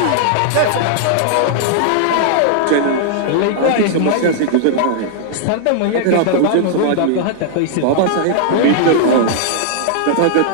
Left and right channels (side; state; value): both; different; correlation -0.01